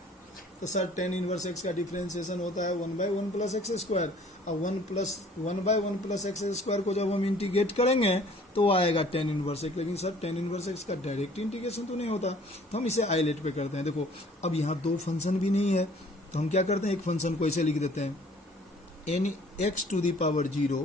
तो सर tan इनवर्स x का डिफरेंशिएशन होता है 1/1 प्लस एक्स स्क्वायर, अब 1/1 प्लस एक्स स्क्वायर को जब हम इंटीग्रेट करेंगे तो आएगा tan इनवर्स x, लेकिन सर tan इनवर्स x का डायरेक्ट इंटीग्रेशन तो नहीं होता, तो हम इसे आइलेट पे करते हैं। देखो अब यहाँ दो फंक्शन भी नहीं है, तो हम क्या करते हैं, एक फंक्शन को ऐसे लिख देते हैं n x to the power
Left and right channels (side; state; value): both; normal; correlation 0.54